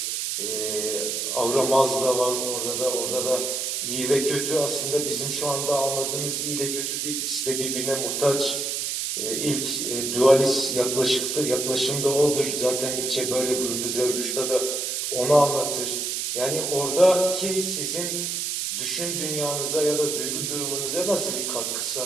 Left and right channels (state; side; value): noise; right; hiss, 1 dB below the sound